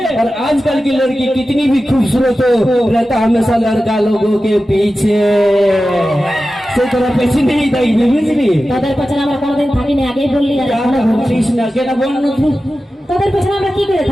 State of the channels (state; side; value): normal; both; correlation 0.94